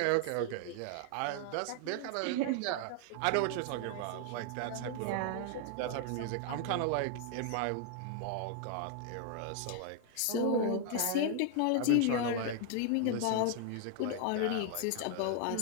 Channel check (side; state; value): both; different; correlation 0.00